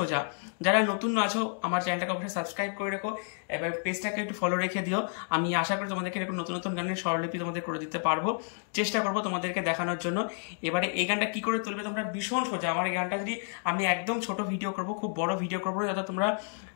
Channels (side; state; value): right; silent; 58 dB below the other